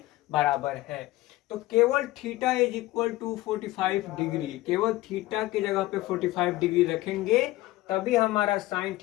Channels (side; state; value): right; quieter; 17.9 dB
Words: बराबर है। तो केवल theta is equal to 45 degree, केवल थीटा की जगह पे 45 डिग्री रखेंगे तभी हमारा साइन